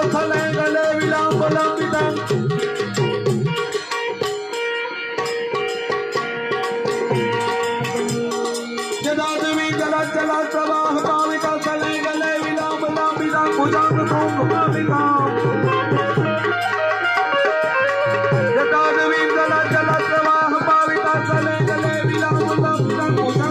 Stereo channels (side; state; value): both; identical; correlation 1.00